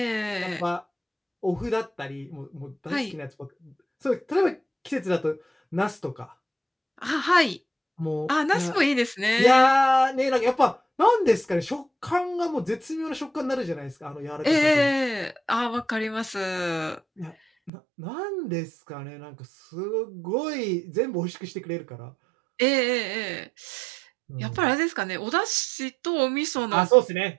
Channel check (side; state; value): left; drops out; at 17.7 s